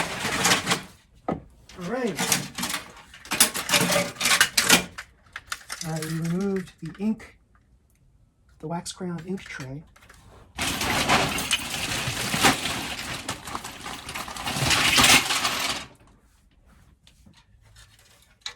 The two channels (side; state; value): both; identical; correlation 1.00